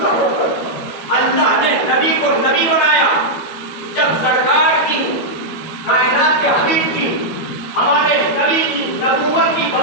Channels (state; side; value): late; right; 12 ms